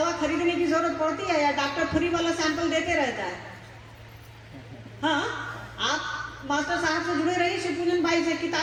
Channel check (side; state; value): both; identical; correlation 1.00